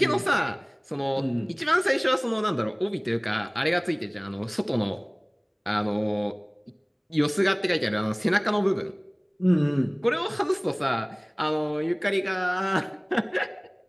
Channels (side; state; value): both; identical; correlation 1.00